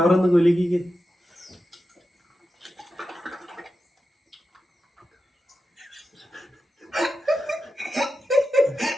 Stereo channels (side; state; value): both; normal; correlation 0.90